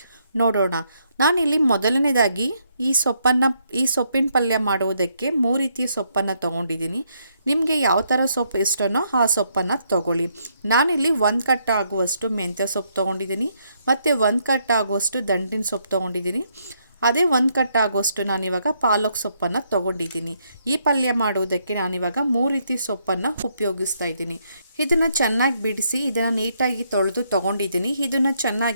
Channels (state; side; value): inverted; both; correlation -0.74